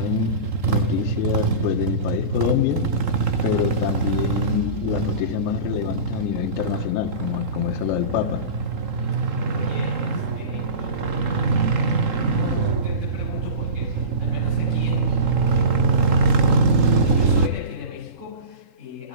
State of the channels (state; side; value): late; left; 3.8 ms